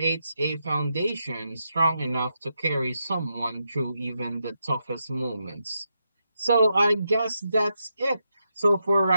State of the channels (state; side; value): inverted; both; correlation -0.84